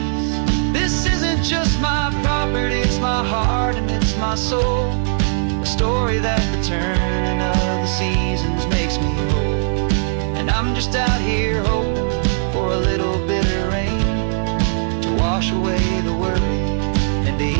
This isn't just my property, it's my heart and it's my soul. A story that the turning of the seasons makes me whole. And I'm just out here hoping for a little bit of rain to wash away the worry and to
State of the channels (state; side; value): silent; left; digital silence